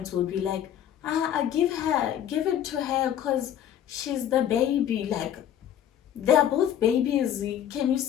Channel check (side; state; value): right; quieter; 10.4 dB